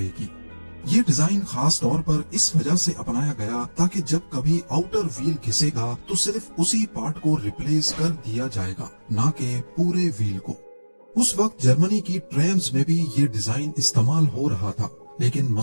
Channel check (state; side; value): inverted; both; correlation -1.00